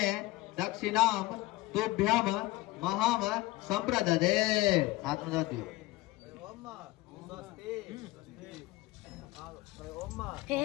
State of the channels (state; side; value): quieter; right; 18.8 dB